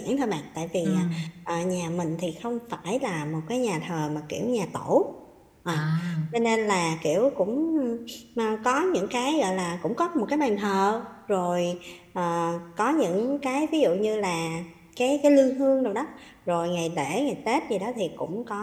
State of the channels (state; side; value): identical; both; correlation 1.00